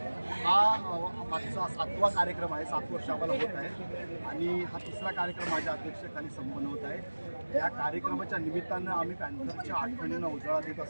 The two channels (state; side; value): inverted; both; correlation -1.00